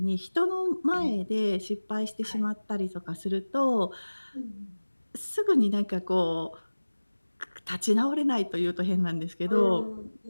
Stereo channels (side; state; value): both; inverted; correlation -1.00